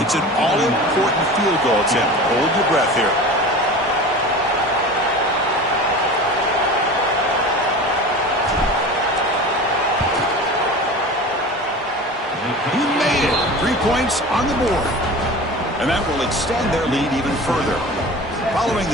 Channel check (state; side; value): normal; both; correlation 0.35